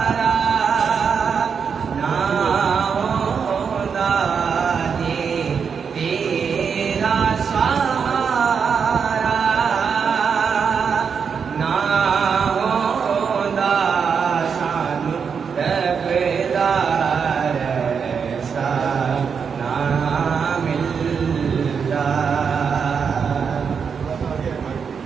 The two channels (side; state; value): left; quieter; 6.4 dB